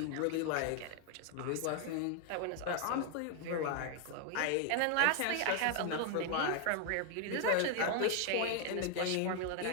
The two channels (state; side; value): different; both; correlation 0.00